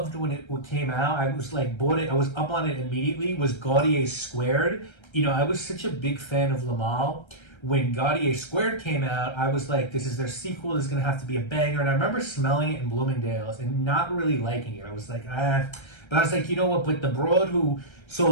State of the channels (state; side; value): late; right; 1.3 ms